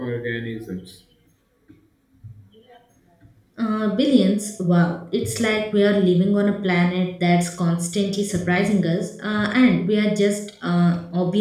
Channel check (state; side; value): identical; both; correlation 1.00